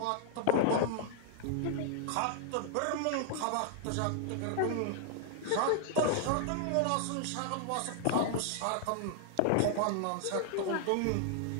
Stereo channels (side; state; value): both; different; correlation 0.00